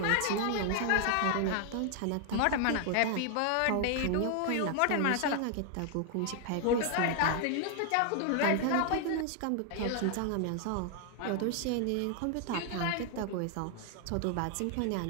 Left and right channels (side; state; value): both; different; correlation 0.00